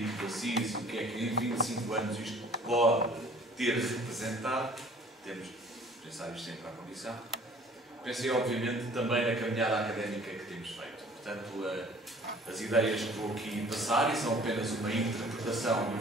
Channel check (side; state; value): both; normal; correlation 0.52